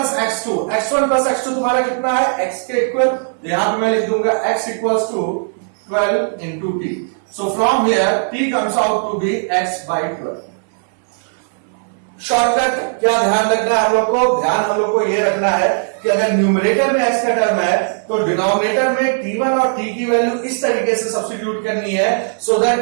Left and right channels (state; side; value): silent; left; 64 dB below the other